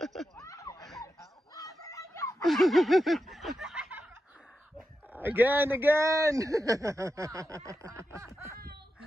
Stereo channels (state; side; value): normal; both; correlation 0.89